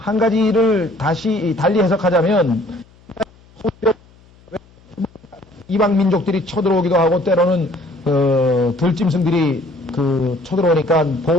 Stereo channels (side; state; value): left; noise; hum, 28 dB below the sound